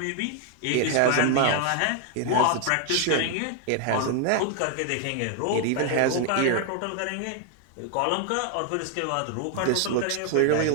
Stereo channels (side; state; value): both; different; correlation 0.00